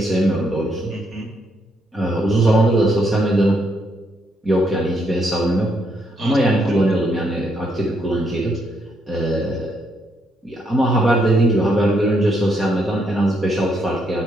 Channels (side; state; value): both; normal; correlation 0.75